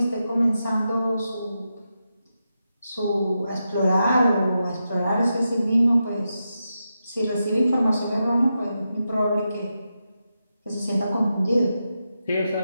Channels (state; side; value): inverted; both; correlation -0.88